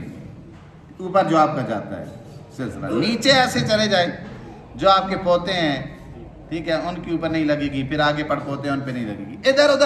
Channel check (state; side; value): identical; both; correlation 1.00